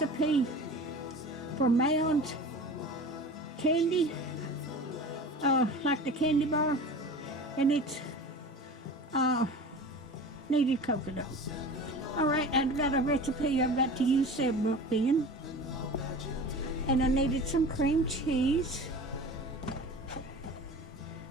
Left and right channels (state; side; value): normal; both; correlation 0.37